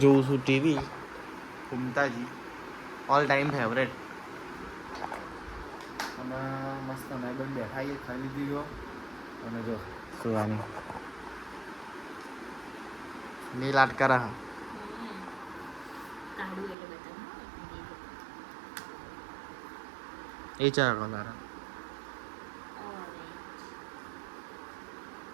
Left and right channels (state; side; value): drops out; left; at 16.8 s